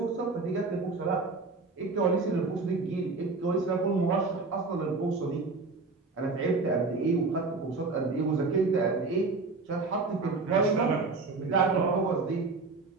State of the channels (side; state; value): left; quieter; 3.9 dB